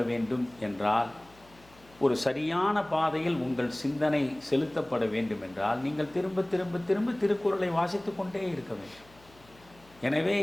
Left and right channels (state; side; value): noise; left; hum, 27 dB below the sound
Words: வேண்டும் என்றால், ஒரு சரியான பாதையில் உங்கள் சிந்தனை செலுத்தப்பட வேண்டும் என்றால், நீங்கள் திரும்ப திரும்ப திரும்ப திருக்குறளை வாசித்து கொண்டே இருக்க வேண்டும். எனவே